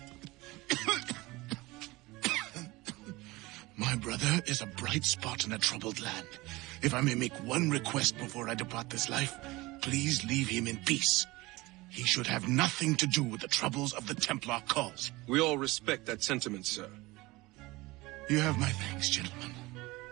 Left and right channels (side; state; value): left; quieter; 21.3 dB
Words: My brother is a bright spot in a troubled land. If I may make one request before I depart this life, please leave him in peace. He should have nothing to do with the troubles of the Templar cause. We all respect that sentiment, sir. You have my thanks, gentlemen.